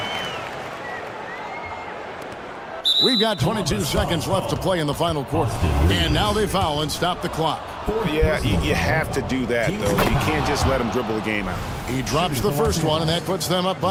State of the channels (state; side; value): identical; both; correlation 1.00